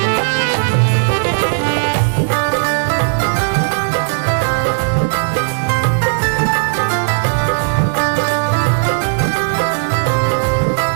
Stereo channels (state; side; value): silent; left; digital silence